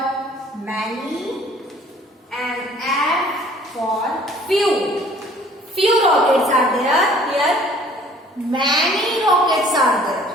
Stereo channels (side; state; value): both; normal; correlation 0.54